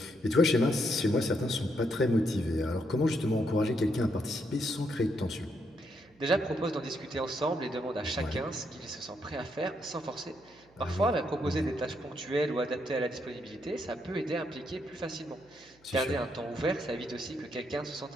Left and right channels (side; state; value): right; noise; hum, 30 dB below the sound